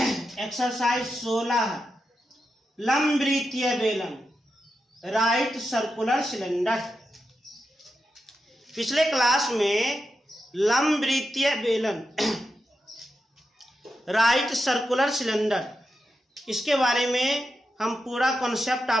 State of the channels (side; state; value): both; normal; correlation 0.88